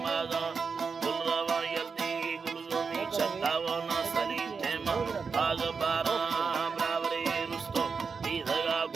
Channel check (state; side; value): quieter; left; 5.3 dB